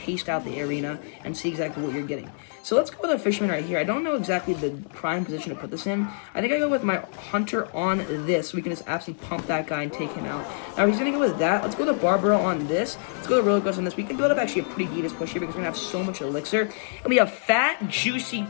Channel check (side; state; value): right; silent; 61 dB below the other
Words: out the arena and see exactly what you're getting. So let's go with our Fisherman right here. I don't know exactly the prime position to put this in. I think I go with my Hunter on this, so we can just absolutely pump that guy and take him out. Now, he's going to go with that. Let's go with the Barbaro on this. Let's go with the Royal Ghost on this. We can build up actually a pretty devious push here because we're going to have so much elixir. And we have fat, juicy,